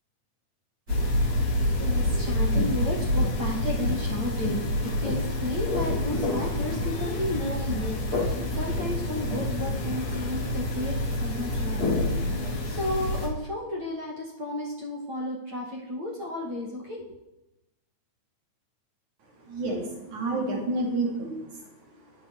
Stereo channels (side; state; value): left; late; 8.5 ms